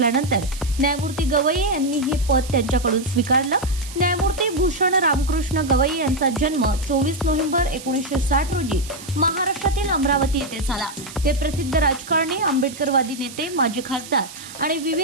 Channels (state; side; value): noise; right; hiss, 15 dB below the sound